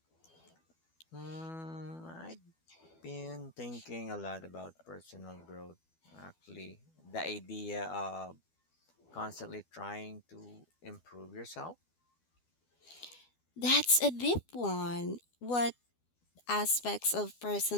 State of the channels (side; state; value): right; late; 12 ms